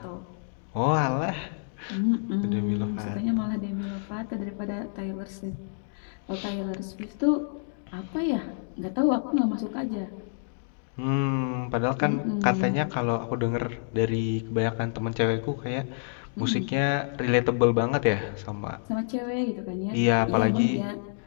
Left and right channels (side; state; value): right; silent; digital silence